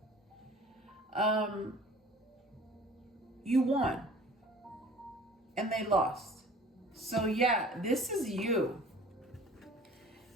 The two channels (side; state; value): both; normal; correlation 0.47